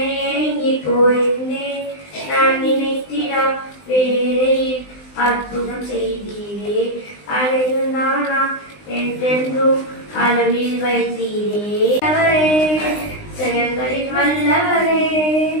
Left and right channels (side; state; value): right; late; 19 ms